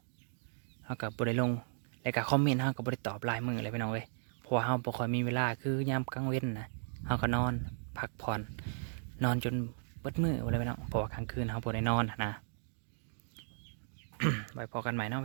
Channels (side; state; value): left; silent; digital silence